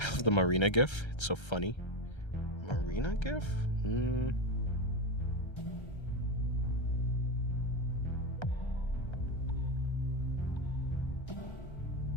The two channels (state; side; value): late; right; 1.3 ms